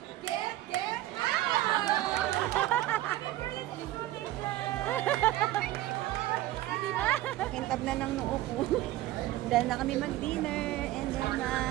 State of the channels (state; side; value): quieter; left; 15.3 dB